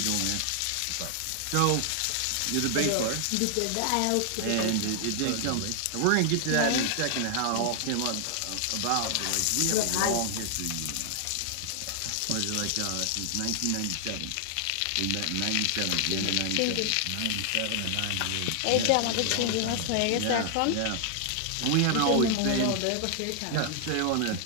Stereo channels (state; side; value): different; both; correlation 0.00